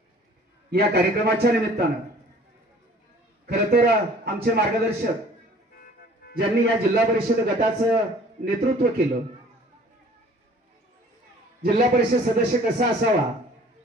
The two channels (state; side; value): normal; both; correlation 0.52